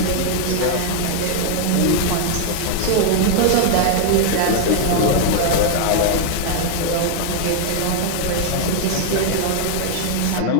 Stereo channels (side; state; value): both; different; correlation 0.00